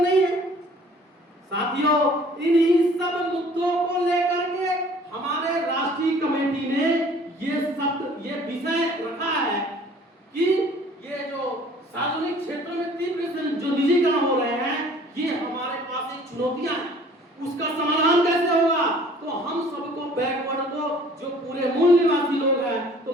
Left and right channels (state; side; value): normal; both; correlation 0.53